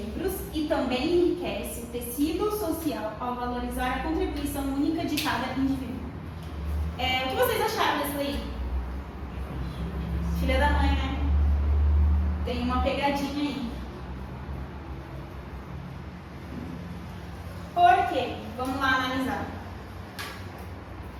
e também enriquece o tecido social ao valorizar a contribuição única de cada indivíduo. O que vocês acharam dessa aí? Filha da mãe, né? Tem uma pegadinha aí. Por quê? Vamos lá analisar.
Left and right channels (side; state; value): both; identical; correlation 1.00